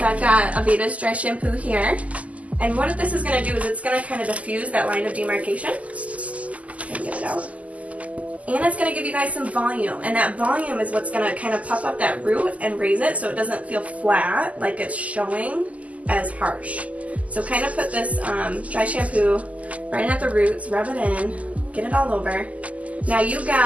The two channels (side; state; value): left; late; 0.071 ms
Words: I've got Aveda's dry shampoo here. And what this is going to do is it's going to kind of diffuse that line of demarcation. Get it out. And it's going to give you guys some volume. And that volume is what's going to kind of puff up that root and raise it so it doesn't feel flat, like it's showing as harsh. So kind of put this dry shampoo right at the roots, rub it in, get it all over. Now you